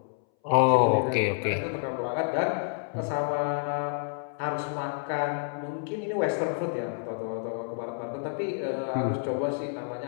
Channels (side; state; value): right; silent; 59 dB below the other